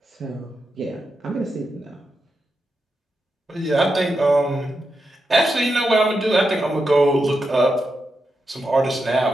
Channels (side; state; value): both; normal; correlation 0.87